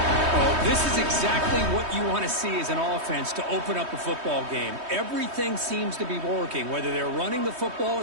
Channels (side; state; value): left; late; 3.2 ms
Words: this is exactly what you want to see as an offense to open up a football game. Everything seems to be working, whether they're running the football,